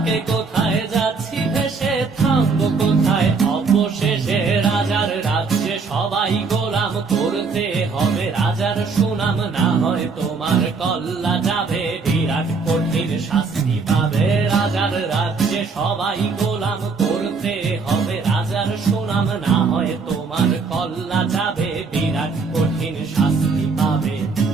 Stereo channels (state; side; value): quieter; left; 4.6 dB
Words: কে কোথায় যাচ্ছি ভেসে, থামবো কোথায় অবশেষে। রাজার রাজ্যে সবাই গোলাম, করতে হবে রাজার সুনাম, না হয় তোমার কল্লা যাবে, বিরাট কঠিন শাস্তি পাবে। রাজার রাজ্যে সবাই গোলাম, করতে হবে রাজার সুনাম, না হয় তোমার কল্লা যাবে, বিরাট কঠিন শাস্তি পাবে।